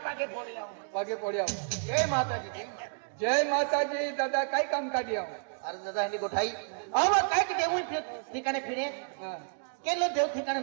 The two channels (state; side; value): silent; left; digital silence